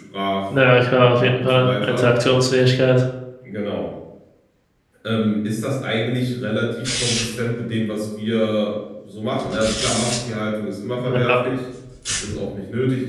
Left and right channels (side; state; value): both; identical; correlation 1.00